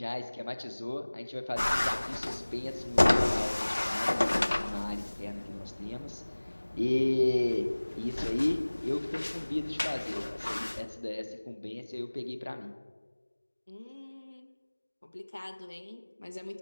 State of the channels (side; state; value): both; inverted; correlation -1.00